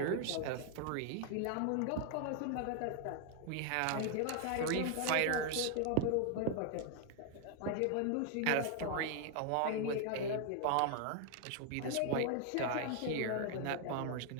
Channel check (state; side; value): different; both; correlation 0.00